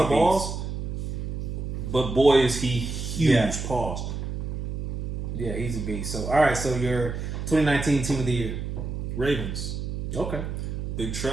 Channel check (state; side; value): noise; right; hum, 4 dB below the sound